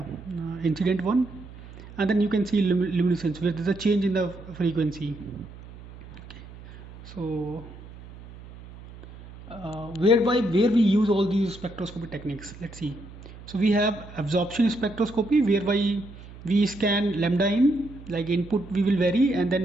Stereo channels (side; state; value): right; noise; hum, 17 dB below the sound